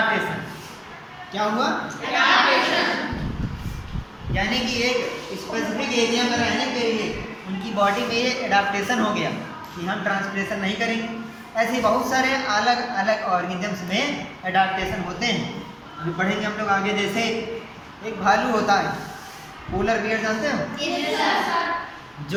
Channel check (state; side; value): identical; both; correlation 1.00